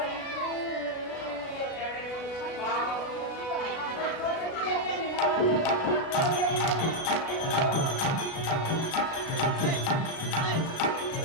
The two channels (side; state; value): right; late; 36 ms